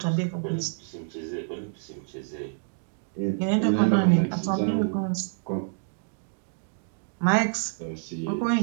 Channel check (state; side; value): silent; left; digital silence